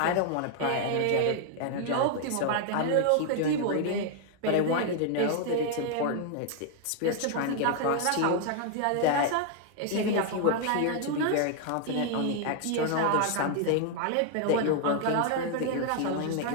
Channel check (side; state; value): both; different; correlation 0.00